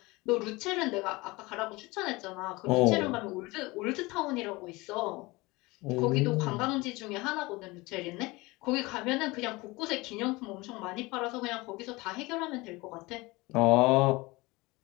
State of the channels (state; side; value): quieter; right; 22.8 dB